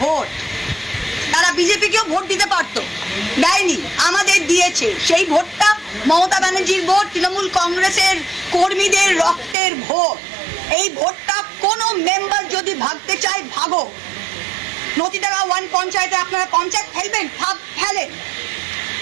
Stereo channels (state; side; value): drops out; left; at 9.6 s